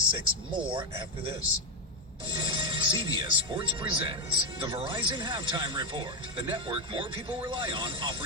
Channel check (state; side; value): normal; both; correlation 0.06